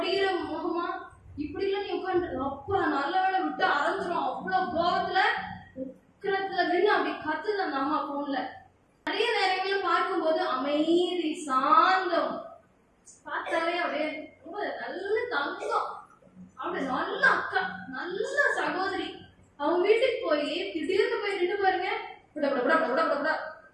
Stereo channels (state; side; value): identical; both; correlation 1.00